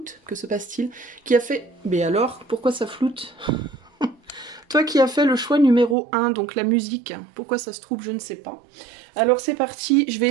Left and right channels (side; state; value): left; drops out; at 6.0 s